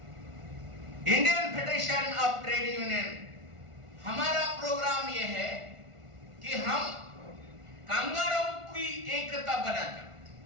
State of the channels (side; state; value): left; late; 1.4 ms